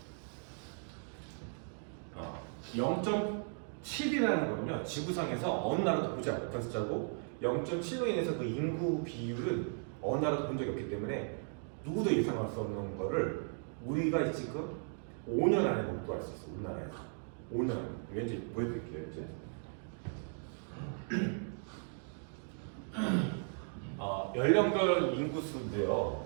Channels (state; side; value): silent; left; 53 dB below the other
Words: 0.7이라는 거는요 지구상에서 어느 나라도 보지 못한 숫자고 0.7로 인해서 그 인구 비율은 어느 나라도 본 적이 없기 때문에 누구도 예상할 수 없는 거를 우리가 지금 5년 안에 목도할 수 있어. 우리나라에서 5년 안에. 왠지 보여드릴게요 이제. 연령별 인구수인데요.